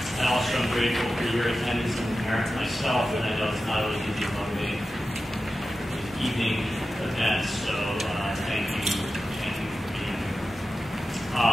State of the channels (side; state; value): both; normal; correlation 0.93